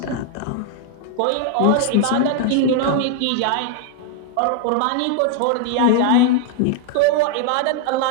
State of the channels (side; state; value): both; different; correlation 0.00